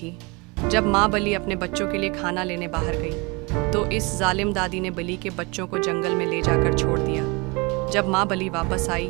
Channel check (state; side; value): quieter; left; 27.6 dB